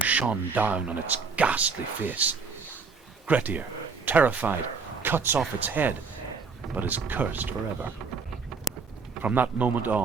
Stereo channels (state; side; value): quieter; left; 4.9 dB